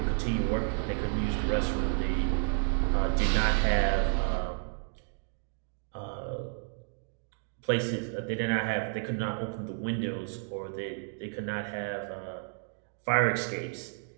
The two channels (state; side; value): silent; left; digital silence